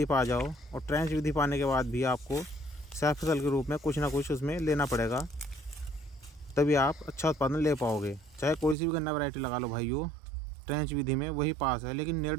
पर आ जाओ। और ट्रेंच विधि पाने के बाद भी आपको सह फसल के रूप में कुछ ना कुछ उसमें लेना पड़ेगा, तभी आप अच्छा उत्पादन ले पाओगे। चाहे कोई सी भी गन्ना वैरायटी लगा लो भाइयों, ट्रेंच विधि में वही पास है। लेकिन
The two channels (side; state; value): left; drops out; at 8.8 s